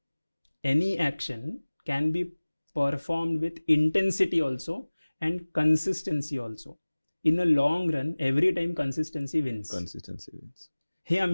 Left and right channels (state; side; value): inverted; both; correlation -1.00